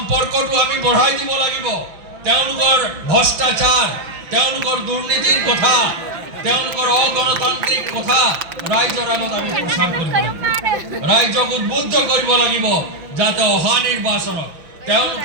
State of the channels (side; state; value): left; late; 6.0 ms